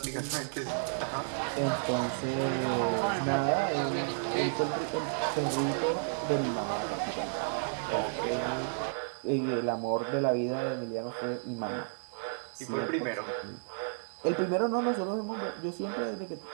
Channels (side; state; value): left; silent; 56 dB below the other